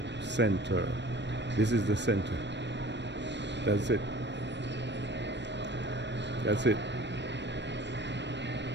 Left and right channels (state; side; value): late; left; 0.51 ms